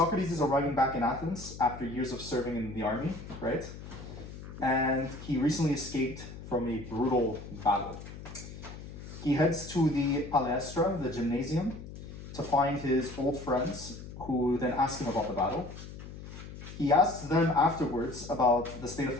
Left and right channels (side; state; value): left; noise; hum, 12 dB below the sound